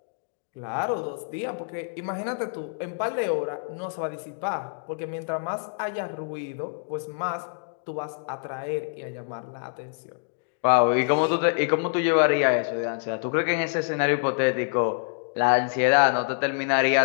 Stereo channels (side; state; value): right; silent; digital silence